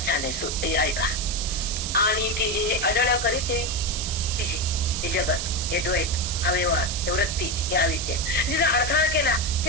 छान आहे. ऐका आणि ती जे अडळ करीते तिचे हे जगत हे द्वैत हा व्यवहार हे वृत्ती हे अविद्या जिला अडथळा केला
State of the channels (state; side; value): noise; right; hiss, 3 dB below the sound